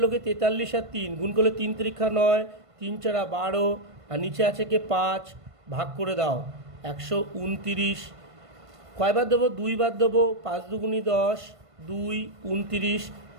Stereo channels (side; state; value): left; late; 1.5 ms